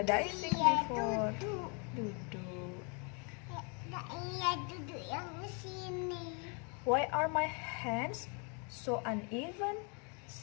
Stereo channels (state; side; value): quieter; right; 35.7 dB